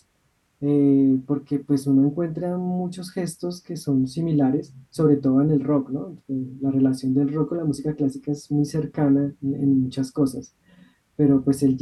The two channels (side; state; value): both; identical; correlation 1.00